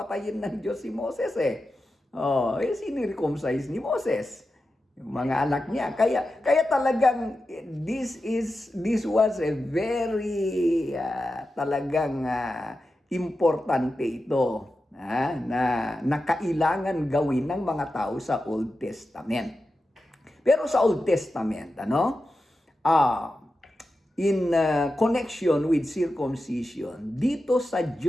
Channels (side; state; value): both; normal; correlation 0.91